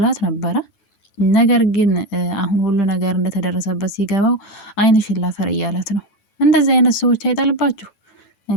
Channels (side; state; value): right; late; 9.2 ms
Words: ነበረ። ነገር ግን አሁን ሁሉ ነገር እንደተደረሰበት ሲገባው ዓይንሽን ላፈር እያለት ነው። እንደዚህ አይነት ሰዎች አይጣልባችሁ